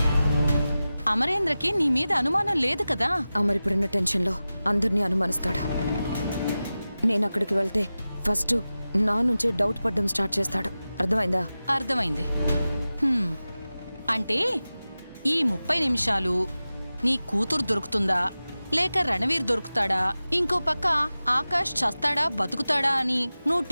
అమరేంద్రకి నీ మీద అనుమానం లేదు కదా. అమర్ ఇప్పుడున్న టెన్షన్లో అందరినీ అనుమానిస్తాడు. నేను అక్కడికి వెళ్తే ఫస్ట్ నా నుంచే డౌట్ పడ్డం స్టార్ట్ చేస్తాడు. అర్థమైందా? అర్థమైంది. అంటే ఈ 30 నిమిషాలు నీ కూతురు దొరుకుతుందా లేక రణవీర్ దొరుకుతాడా, ఇంకో పక్క ఆకాష్ చస్తాడా బతుకుతాడా అని నువ్వు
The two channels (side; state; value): both; inverted; correlation -0.95